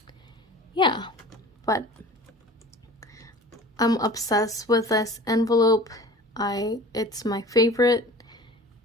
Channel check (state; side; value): normal; both; correlation 0.42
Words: yeah. But I'm obsessed with this envelope. It's my favorite,